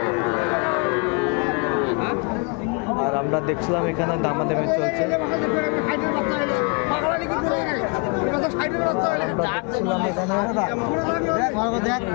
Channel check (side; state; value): right; quieter; 33.8 dB